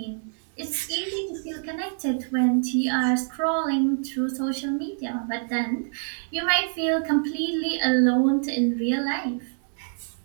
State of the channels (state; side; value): silent; left; digital silence